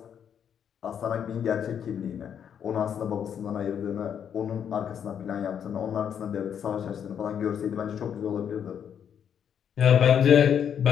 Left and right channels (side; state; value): right; quieter; 8.4 dB